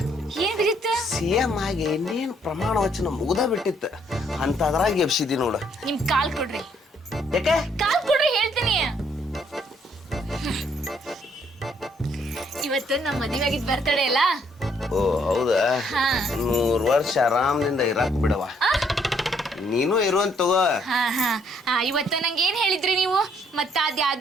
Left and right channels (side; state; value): both; normal; correlation 0.68